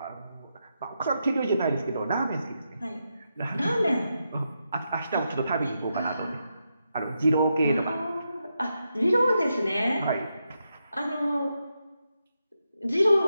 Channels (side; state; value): both; inverted; correlation -0.85